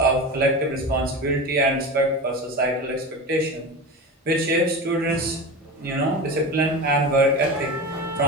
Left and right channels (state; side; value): normal; both; correlation 0.27